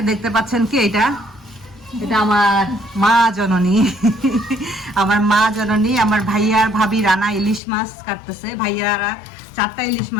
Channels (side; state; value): right; drops out; at 7.6 s